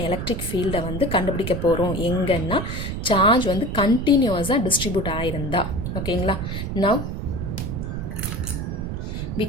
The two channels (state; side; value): noise; right; rumble, 4 dB below the sound